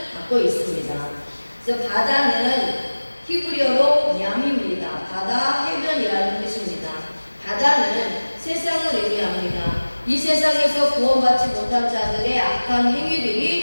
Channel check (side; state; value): both; inverted; correlation -1.00